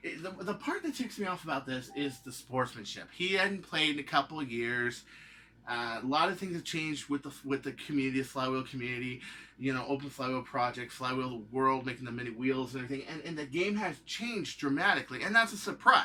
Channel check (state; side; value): identical; both; correlation 1.00